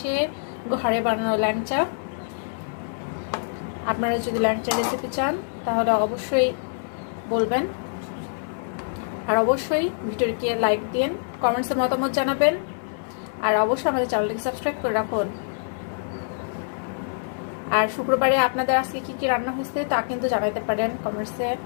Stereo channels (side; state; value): right; silent; 62 dB below the other